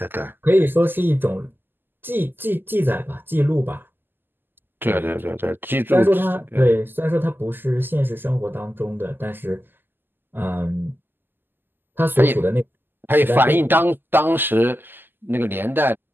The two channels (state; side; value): late; left; 0.094 ms